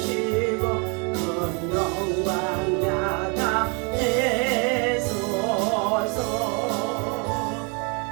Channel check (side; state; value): left; quieter; 34.0 dB